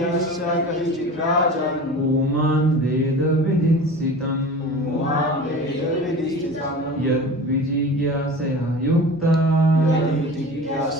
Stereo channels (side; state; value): both; normal; correlation 0.36